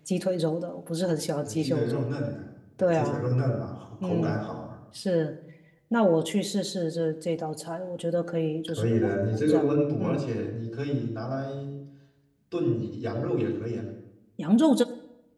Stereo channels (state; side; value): identical; both; correlation 1.00